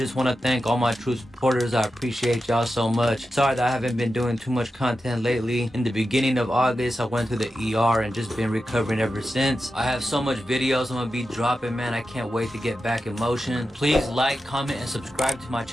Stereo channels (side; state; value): both; normal; correlation 0.91